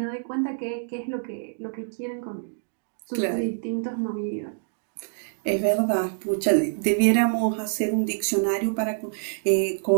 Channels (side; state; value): left; silent; digital silence